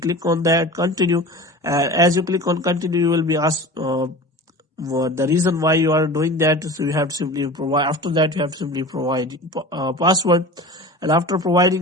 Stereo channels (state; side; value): normal; both; correlation 0.35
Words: on that, continue. As you click on continue, you will be asked the reason why you are doing that. So you have to simply provide, after that you have to simply provide password. And after